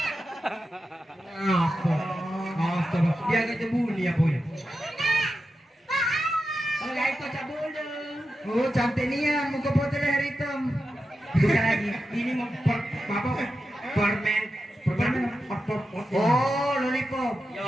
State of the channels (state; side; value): normal; both; correlation 0.90